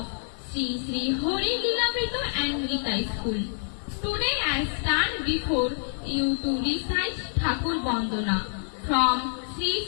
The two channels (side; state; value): right; silent; digital silence